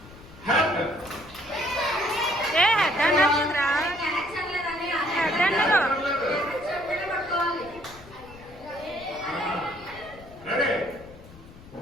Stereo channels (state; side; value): noise; left; rumble, 20 dB below the sound